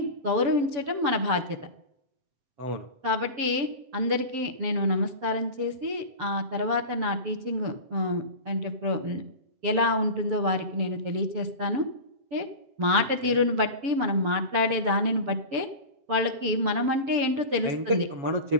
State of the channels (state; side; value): late; left; 7.6 ms